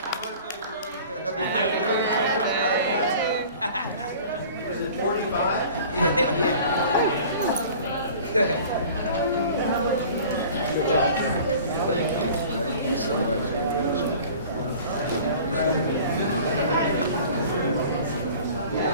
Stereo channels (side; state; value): both; inverted; correlation -0.45